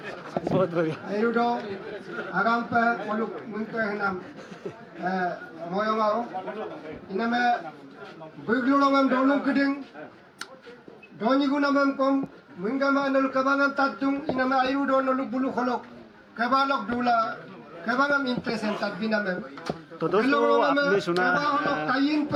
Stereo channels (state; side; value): identical; both; correlation 1.00